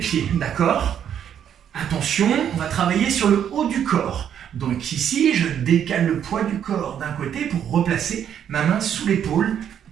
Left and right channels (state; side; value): quieter; left; 9.2 dB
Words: d'accord? Attention, on va travailler sur le haut du corps. Donc ici, je décale le poids du corps d'un côté pour replacer ma main sous l'épaule